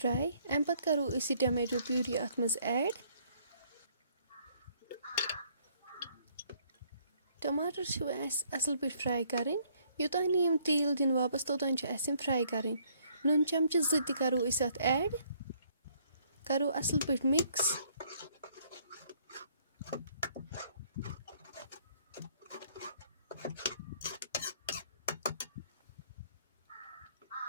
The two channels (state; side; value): inverted; both; correlation -0.65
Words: اَمہِ پَتہٕ کَرو أسۍ یہِ ٹمیٹو پیوٗری اَتھ منٛز ایڈ. ٹماٹر چھِ اَسہِ اَصٕل پٲٹھۍ فرٛاے کَرٕنۍ. یوٚتانۍ نہٕ یِم تیٖل دِنۍ واپَس توٚتانۍ چھِ اَسہِ یِم فرٛاے کَرٕنۍ. نُن چمچہٕ 2 تہِ کَرو أسۍ اَتھ ایڈ. کَرو اَصٕل پٲٹھۍ مِکٕس.